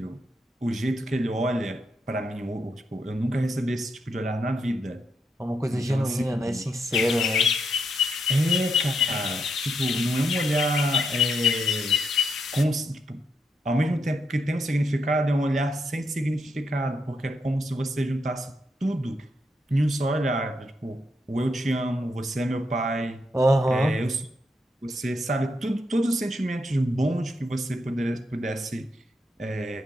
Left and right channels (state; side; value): normal; both; correlation 0.80